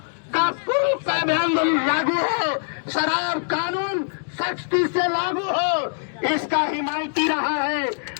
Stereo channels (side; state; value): right; silent; digital silence